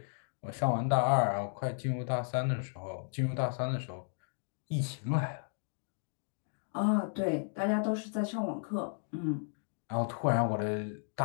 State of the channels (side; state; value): right; silent; digital silence